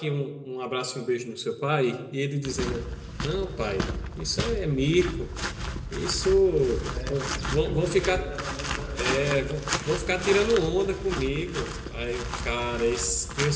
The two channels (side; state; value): both; identical; correlation 1.00